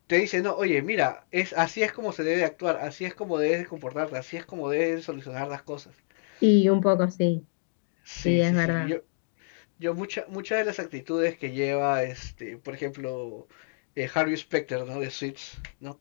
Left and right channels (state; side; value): silent; right; digital silence